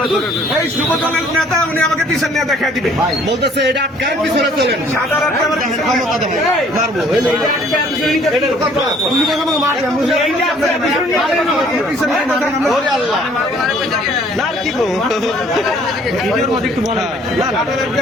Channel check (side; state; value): both; normal; correlation 0.58